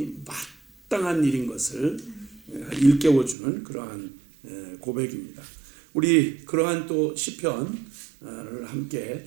마땅한 일인 것을 일깨워주는 그러한 고백입니다. 우리 그러한 또 시편을 함께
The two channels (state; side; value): drops out; left; at 3.4 s